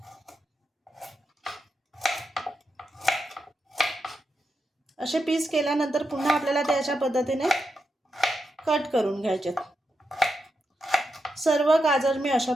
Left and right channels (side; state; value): both; normal; correlation 0.86